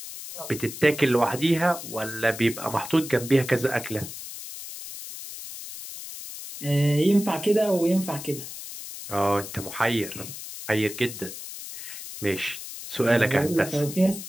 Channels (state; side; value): noise; left; hiss, 11 dB below the sound